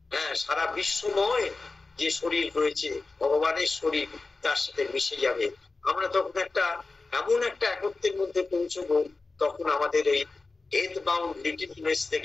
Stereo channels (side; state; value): right; quieter; 3.7 dB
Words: সারা বিশ্বময় যে শরীর রয়েছে, ভগবানের শরীর, তার সাথে মিশে যাবে। আমরা তখন এমন একটা একত্বের মধ্যে পৌঁছবো, তখন আমাদের এই ডেথ বাউন্ড লিটলনেস